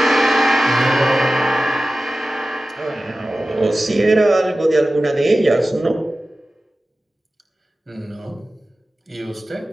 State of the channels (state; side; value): normal; both; correlation 0.95